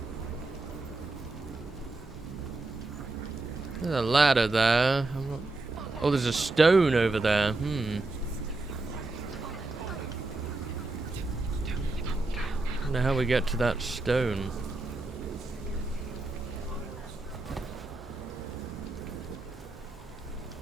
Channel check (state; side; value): quieter; left; 3.2 dB